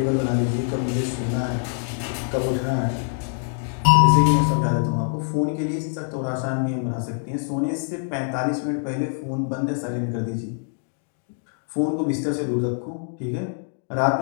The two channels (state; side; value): silent; right; digital silence